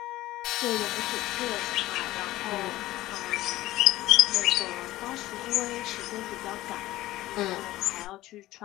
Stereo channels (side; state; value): right; quieter; 16.4 dB